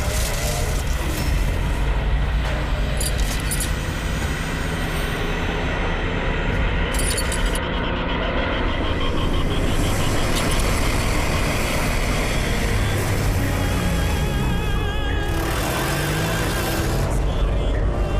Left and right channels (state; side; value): identical; both; correlation 1.00